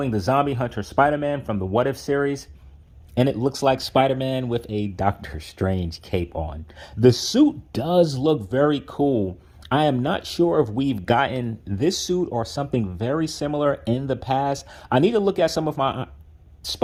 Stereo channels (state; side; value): identical; both; correlation 1.00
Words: the Zombie Hunter Spider-Man from the What If series. And it looks like Spider-Man with a Doctor Strange cape on. The suit does look very cool. I am not sure if we've gotten this suit or something very similar in the past. I need to look at some of my